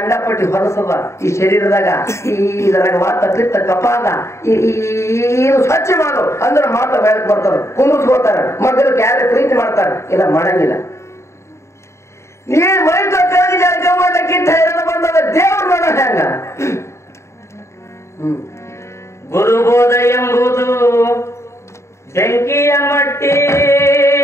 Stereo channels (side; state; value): right; late; 0.14 ms